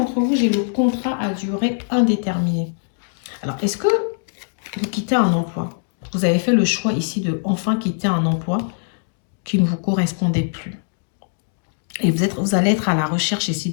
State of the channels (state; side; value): silent; right; digital silence